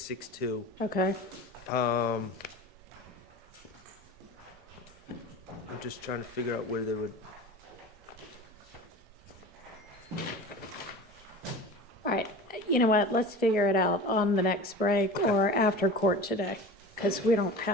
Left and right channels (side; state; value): both; normal; correlation 0.35